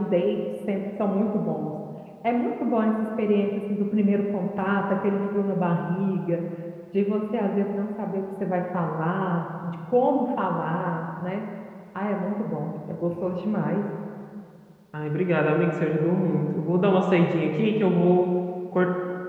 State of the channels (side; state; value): both; identical; correlation 1.00